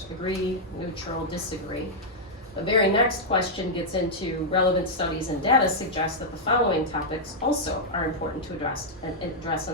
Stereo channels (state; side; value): normal; both; correlation -0.05